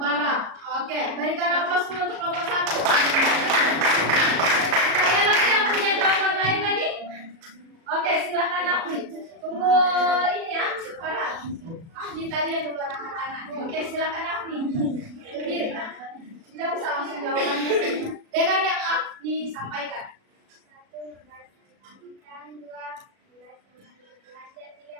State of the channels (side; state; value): left; late; 36 ms